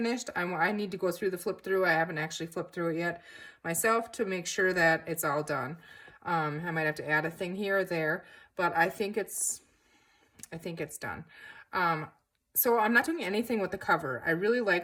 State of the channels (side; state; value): both; identical; correlation 1.00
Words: I need to go through the flip through. I haven't actually flipped through it yet myself to make sure that it's all done. I might have to add a thing here or there, but I think it's done. So I'm not doing anything with the cover. I really